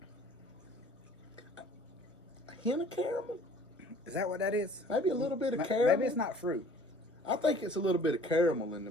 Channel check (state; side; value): normal; both; correlation 0.52